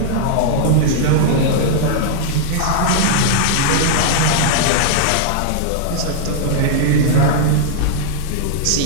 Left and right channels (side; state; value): both; different; correlation -0.01